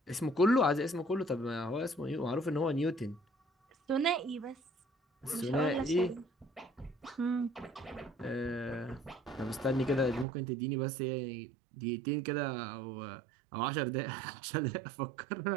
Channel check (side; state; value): left; drops out; at 10.2 s